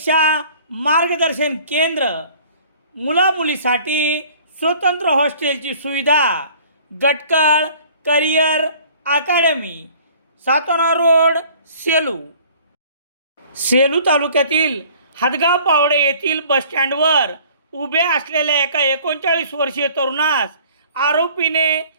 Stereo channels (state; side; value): inverted; both; correlation -0.51